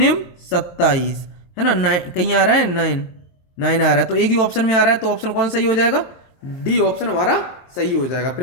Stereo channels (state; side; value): late; right; 23 ms